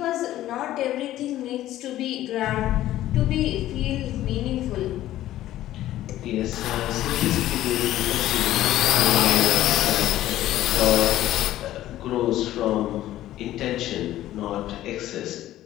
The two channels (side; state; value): right; quieter; 14.0 dB